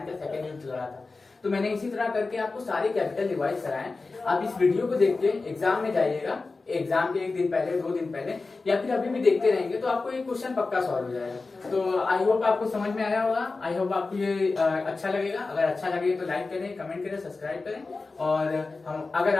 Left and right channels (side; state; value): right; quieter; 3.8 dB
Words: का सेकंड युद्ध लड़ा था। तो मैंने इसी तरह करके आपको सारे कैपिटल रिवाइज कराए। आप इस वीडियो को देख के एग्जाम में जाइएगा, एग्जाम के 1 दिन पहले, 2 दिन पहले, या फिर अभी भी देखते रहेंगे तो आपको ये क्वेश्चन पक्का सॉल्व हो जाएगा। तो आई होप आपको समझ में आया होगा। आई होप आपको ये अच्छा लगेगा। अगर अच्छा लगे तो लाइक करें, कमेंट करें, सब्सक्राइब करें। और हम, अगर